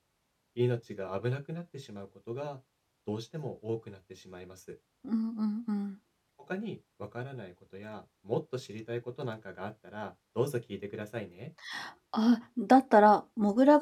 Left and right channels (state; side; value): identical; both; correlation 1.00